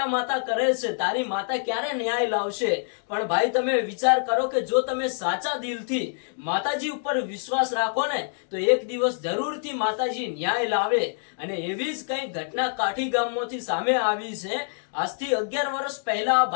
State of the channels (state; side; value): silent; right; digital silence